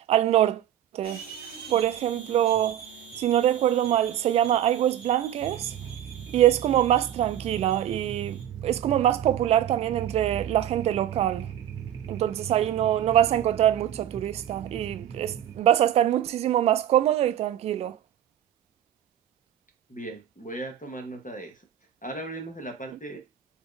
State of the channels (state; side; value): quieter; left; 11.1 dB